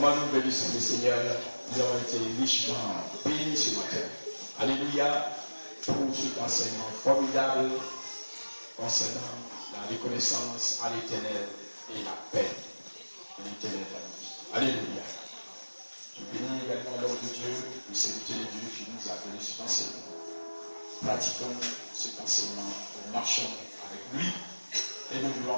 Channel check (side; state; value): both; inverted; correlation -1.00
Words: nous bénissons le Seigneur. Nous avons été richement bénis ce matin. Alléluia. Pour cet enseignement formidable concernant la reconnaissance à l'Éternel et la paix de l'Éternel dans la vie. Alléluia. Je bénis également l'homme de Dieu, le serviteur de Dieu qui nous a donné cet enseignement. Pratiquons cet enseignement, nous marchons avec lui et nous voulons